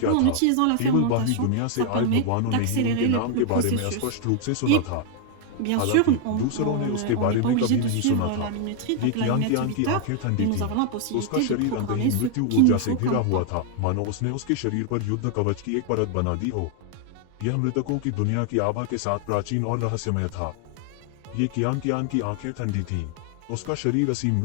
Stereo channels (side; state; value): both; different; correlation 0.00